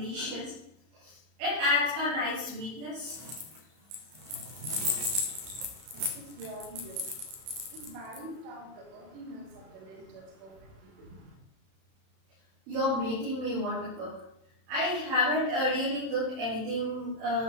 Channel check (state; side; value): late; left; 31 ms